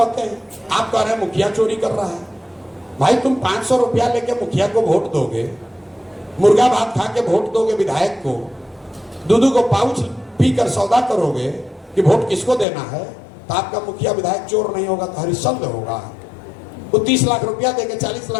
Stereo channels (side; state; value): right; drops out; at 12.7 s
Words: हैं, आप कह रहे हैं मुखिया चोरी कर रहा है। भाई तुम 500 रुपया लेके मुखिया को वोट दोगे, मुर्गा भात खा के वोट दोगे विधायक को, दूध को पाउच पीकर सौदा करोगे कि वोट किसको देना है, तो आपका मुखिया विधायक चोर नहीं होगा तो हरिश्चंद्र होगा। वो 30 लाख रुपया देके 40